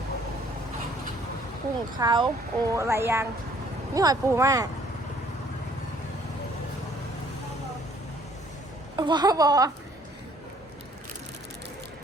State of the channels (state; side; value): normal; both; correlation 0.60